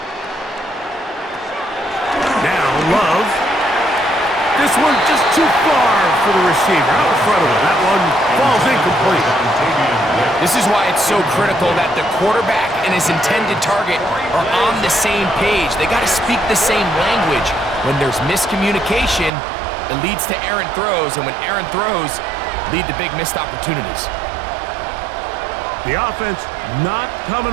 Love. This one just too far for the receiver. Out in front of him. That one falls incomplete. This is why it's so critical that the quarterback and his intended target are on the same page. They got to speak the same language. When there's miscommunication, it leads to errant throws, and when errant throws lead to big missed opportunities. The offense not coming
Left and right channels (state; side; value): drops out; left; at 19.3 s